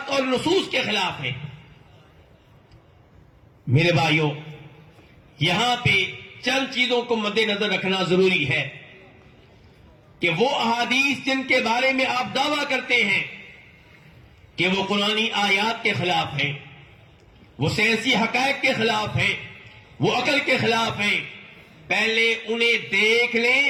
اور نصوص کے خلاف ہیں۔ میرے بھائیوں، یہاں پہ چند چیزوں کو مد نظر رکھنا ضروری ہے کہ وہ احادیث جن کے بارے میں آپ دعویٰ کرتے ہیں کہ وہ قرآنی آیات کے خلاف ہیں، وہ سائنسی حقائق کے خلاف ہیں، وہ عقل کے خلاف ہیں، پہلے انہیں دیکھ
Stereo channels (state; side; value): identical; both; correlation 1.00